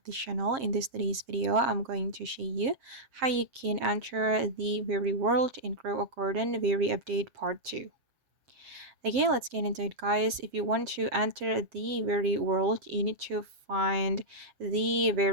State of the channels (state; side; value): late; left; 7.5 ms